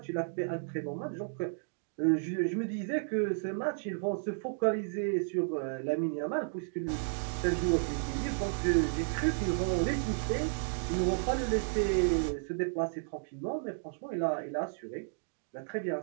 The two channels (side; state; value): left; silent; digital silence